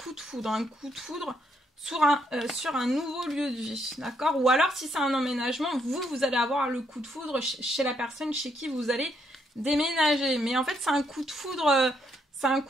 de foudre sur un nouveau lieu de vie, d'accord? Ou alors si c'est un emménagement, vous allez avoir le coup de foudre chez la personne chez qui vous allez déménager. Mais en fait c'est un coup de foudre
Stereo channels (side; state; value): both; normal; correlation 0.74